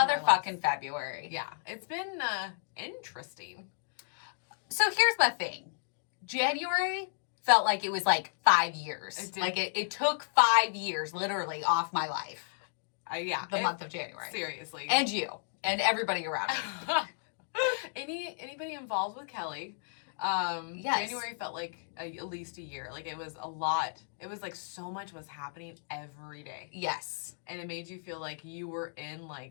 February. Yeah. It's been interesting. So here's my thing. January felt like it was like 5 years. It did. Like it took 5 years literally off my life. Yeah. The month of January. Seriously. And you. And everybody around me. Anybody involved with Kelly. Yes. January felt like at least a year. Like it was a lot. It was like so much was happening every day. Yes. And it made you feel like you were in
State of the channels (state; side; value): silent; right; digital silence